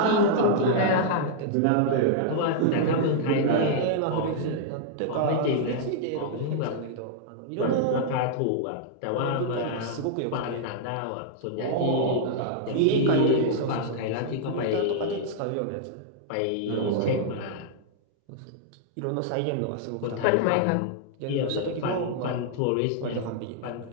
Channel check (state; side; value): different; both; correlation -0.01